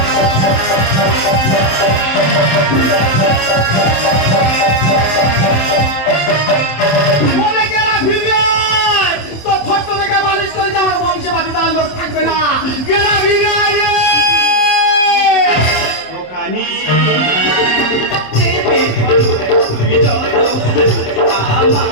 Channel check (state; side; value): late; right; 27 ms